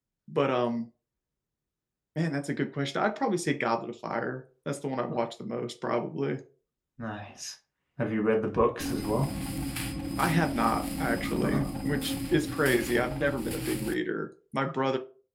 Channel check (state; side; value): identical; both; correlation 1.00